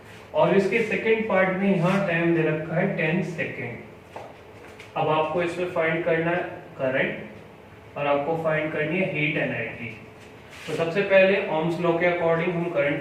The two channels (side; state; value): both; identical; correlation 1.00